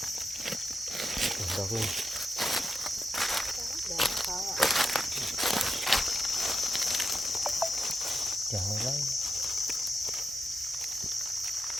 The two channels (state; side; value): normal; both; correlation 0.87